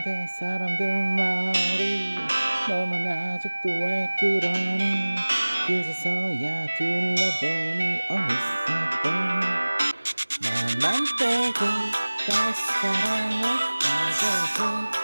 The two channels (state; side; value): inverted; both; correlation -1.00